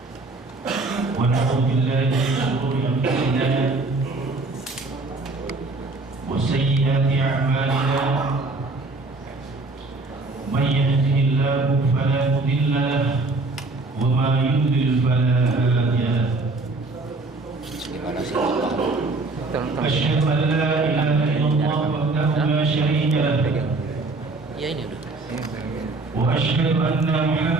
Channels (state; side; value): quieter; left; 3.3 dB